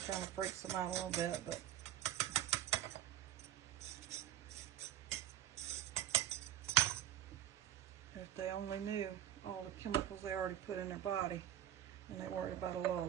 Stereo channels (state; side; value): quieter; left; 11.5 dB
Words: kind of freaks them out a little bit, but if they only knew all the chemicals they already put in their body, and they worried about a little